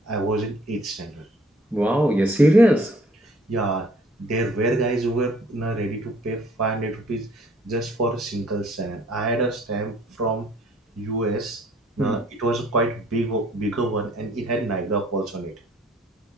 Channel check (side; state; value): both; normal; correlation 0.58